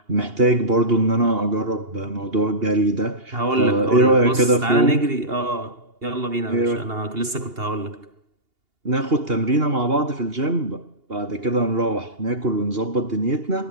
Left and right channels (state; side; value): late; left; 2.8 ms